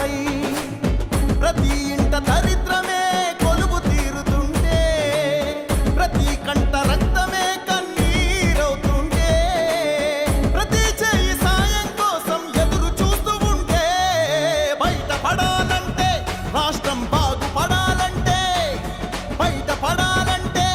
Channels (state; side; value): identical; both; correlation 1.00